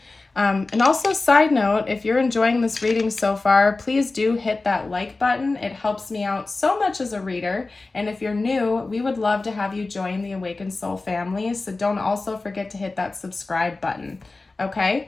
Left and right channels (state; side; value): quieter; right; 3.5 dB